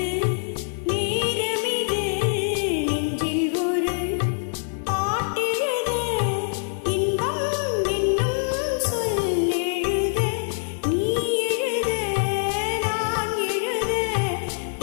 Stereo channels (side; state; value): right; silent; 62 dB below the other